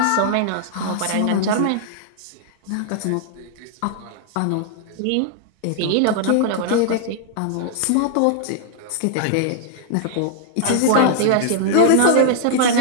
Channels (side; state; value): both; different; correlation -0.01